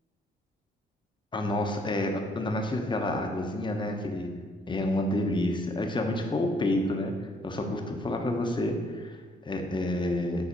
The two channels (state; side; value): normal; both; correlation 0.66